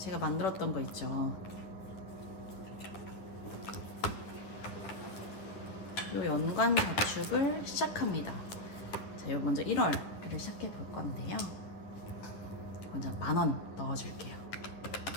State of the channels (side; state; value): right; late; 9.9 ms